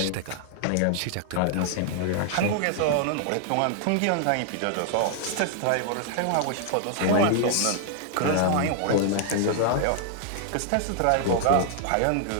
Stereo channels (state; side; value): different; both; correlation 0.00